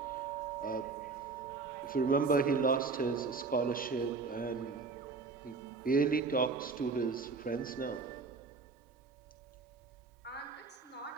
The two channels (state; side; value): quieter; left; 4.4 dB